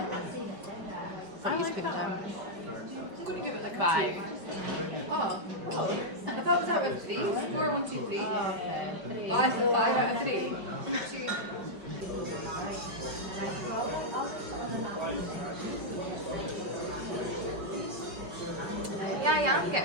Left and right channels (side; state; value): left; late; 5.1 ms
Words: What are you putting down? I'm going to give it like 5. Oh. I thought it was out of 3. 4, 1, 2, 3. Oh, okay. 5 out of 3. 2. Yeah, I'm